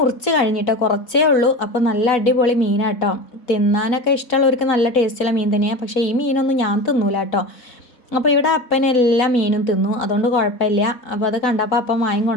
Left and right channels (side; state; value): right; late; 4.0 ms